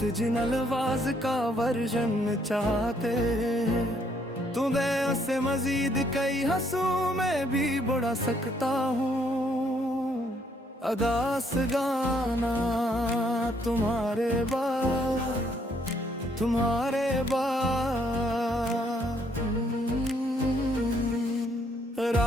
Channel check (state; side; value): normal; both; correlation 0.69